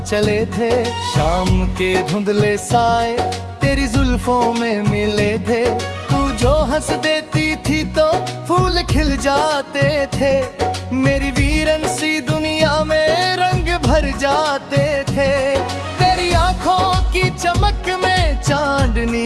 चले थे, शाम के धुंधले साए तेरी जुल्फों में मिले थे। तू जो हंस देती थी तो फूल खिल जाते थे, मेरी वीरन सी दुनिया में रंग भर जाते थे। तेरी आंखों की चमक में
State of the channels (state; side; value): identical; both; correlation 1.00